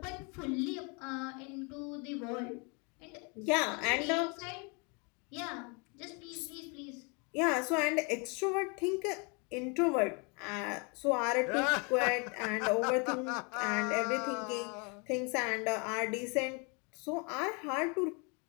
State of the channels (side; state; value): right; quieter; 32.8 dB